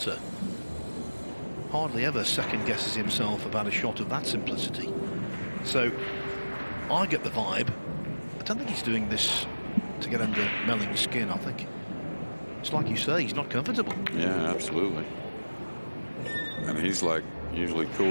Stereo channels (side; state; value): both; inverted; correlation -1.00